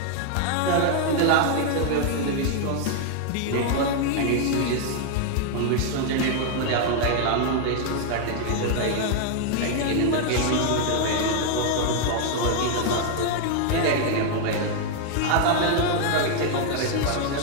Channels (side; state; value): both; different; correlation 0.00